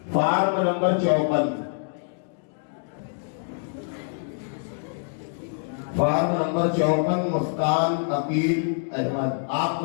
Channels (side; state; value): right; silent; digital silence